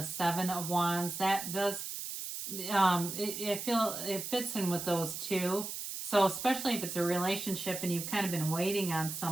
7 of Wands, that does, I feel it fits in with those two. So especially if it's a relationship and you've kind of been waiting on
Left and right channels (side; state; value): right; noise; hiss, 6 dB below the sound